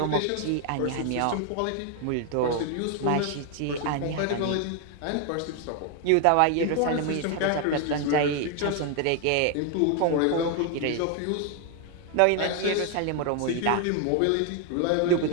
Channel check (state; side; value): different; both; correlation 0.01